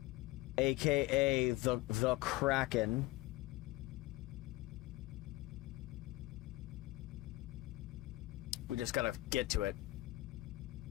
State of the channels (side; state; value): right; quieter; 19.0 dB